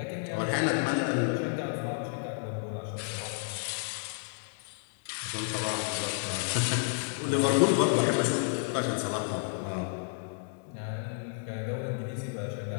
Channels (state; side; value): silent; right; digital silence